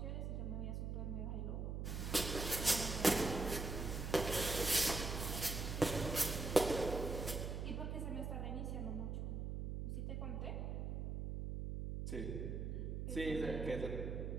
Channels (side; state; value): right; noise; hum, 3 dB below the sound